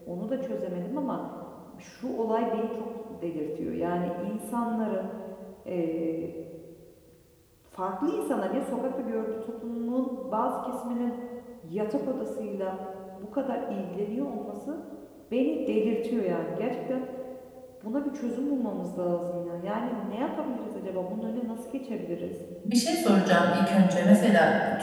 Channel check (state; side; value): identical; both; correlation 1.00